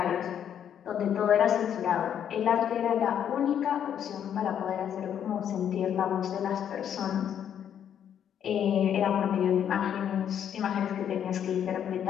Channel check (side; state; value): right; quieter; 9.2 dB